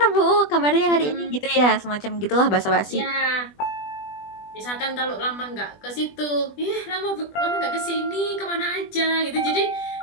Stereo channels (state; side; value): late; right; 20 ms